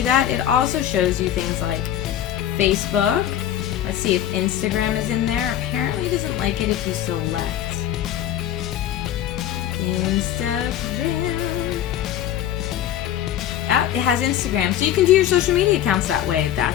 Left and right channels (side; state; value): right; quieter; 11.2 dB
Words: that? It also shows you things like Facebook. Let's see if Instagram is in there. Apparently it doesn't like it if you select Instagram. Oh, it has Instagram, so you can do your social media accounts that way.